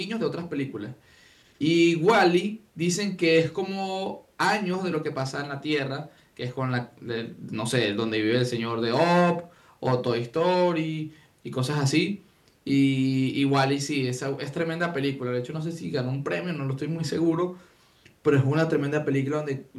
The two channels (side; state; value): both; identical; correlation 1.00